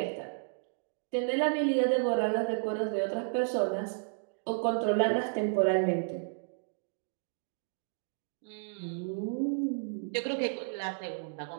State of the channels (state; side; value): silent; left; digital silence